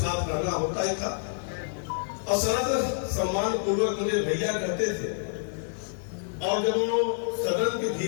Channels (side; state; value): right; silent; digital silence